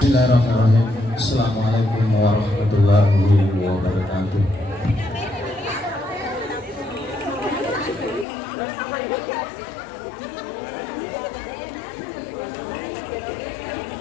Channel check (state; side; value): drops out; right; at 8.2 s